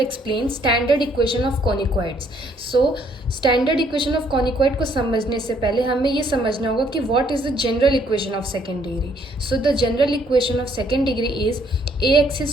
explain standard equation of conicoids. So, standard equation of conicoid को समझने से पहले हमें ये समझना होगा कि what is the general equation of second degree. So, the general equation of second degree is ax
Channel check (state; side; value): normal; both; correlation 0.66